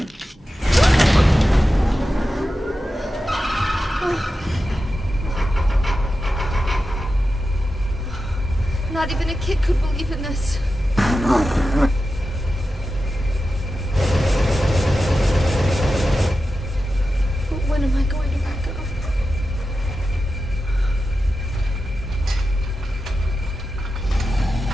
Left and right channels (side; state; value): both; normal; correlation 0.91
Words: Not even a kid could believe in this. But when am I going to wake up?